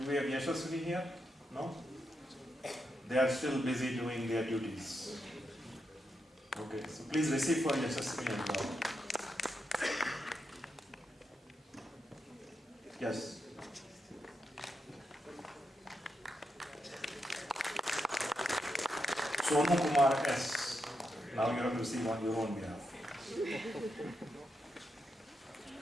we have Yashaswini here? No? They are still busy doing their duties. Okay, so please receive for Yashasvi as well. Yes. Sonu Kumar S. Now you have to receive on your own behalf.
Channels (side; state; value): both; normal; correlation 0.84